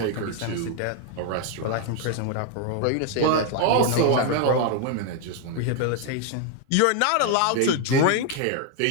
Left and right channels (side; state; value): both; different; correlation 0.00